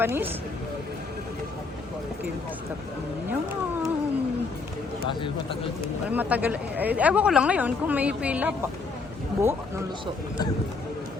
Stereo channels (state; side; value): quieter; right; 4.1 dB